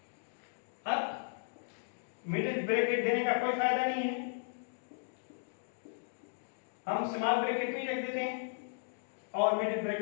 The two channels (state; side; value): silent; right; digital silence